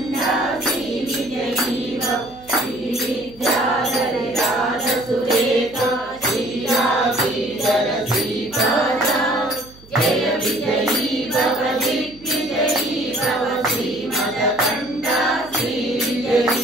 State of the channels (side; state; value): right; noise; hum, 23 dB below the sound